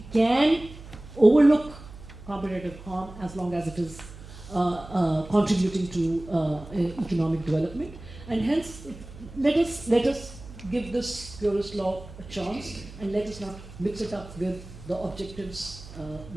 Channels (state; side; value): noise; right; hum, 16 dB below the sound